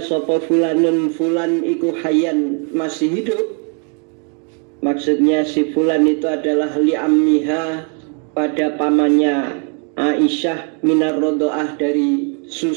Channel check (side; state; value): left; quieter; 39.2 dB